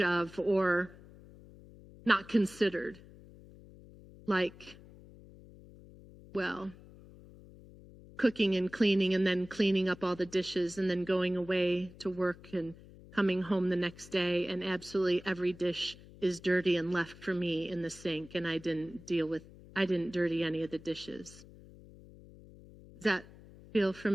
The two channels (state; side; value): noise; left; hum, 20 dB below the sound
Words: of or not considered. Like, well, cooking and cleaning and then cleaning up all the dishes and then going away to work and coming home the next day and absolutely every dish is dirty and left for me in the sink and I didn't dirty any of the dishes. Does that feel